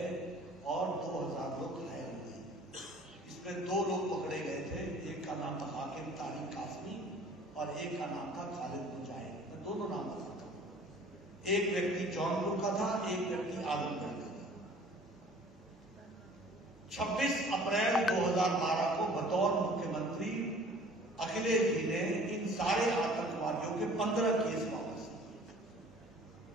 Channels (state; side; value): normal; both; correlation 0.50